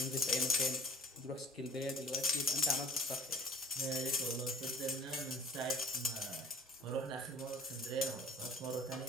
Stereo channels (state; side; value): normal; both; correlation 0.47